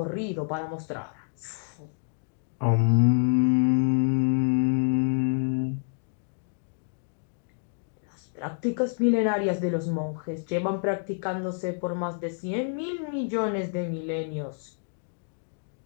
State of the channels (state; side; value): silent; right; digital silence